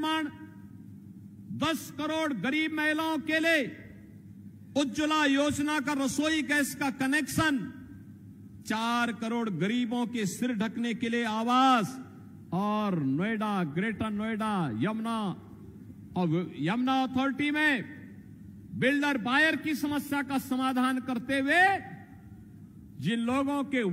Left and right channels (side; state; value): both; identical; correlation 1.00